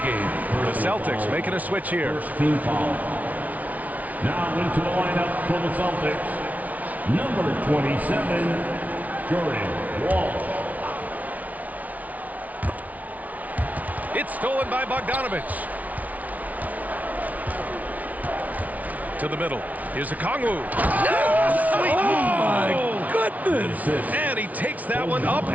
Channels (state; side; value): late; left; 0.072 ms